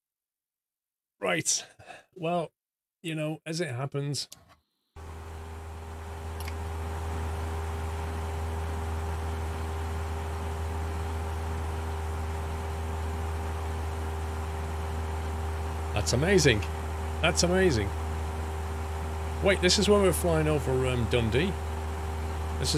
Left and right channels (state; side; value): identical; both; correlation 1.00